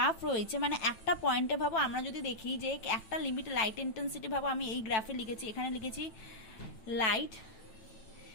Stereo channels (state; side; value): late; right; 9.0 ms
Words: রয়েছে, মানে একটা পয়েন্টে ভাবো আমরা যদি দেখি যে একটা লিমিট লাইট ইন্টেন্সিটি ভাবো, আমি এই গ্রাফে লিখেছি, এখানে লিখেছি লাইট